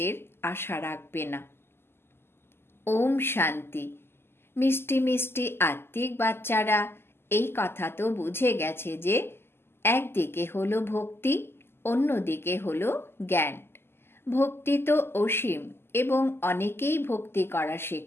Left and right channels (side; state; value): right; late; 0.12 ms